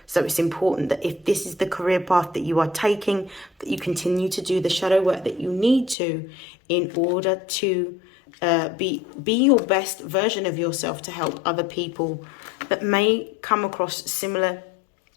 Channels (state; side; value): drops out; right; at 6.0 s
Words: So it's important that if this is the career path that you are taking, that you continue to do the shadow work that you need to in order to be your best version of yourself to help other people that may come across similar